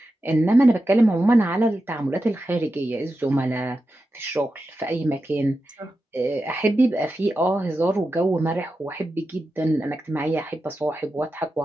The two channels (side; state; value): both; normal; correlation 0.90